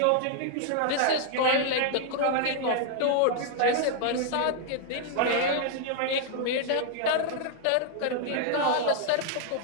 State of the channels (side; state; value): both; different; correlation 0.00